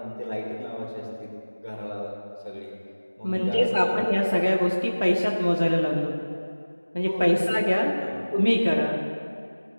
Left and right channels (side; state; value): both; inverted; correlation -1.00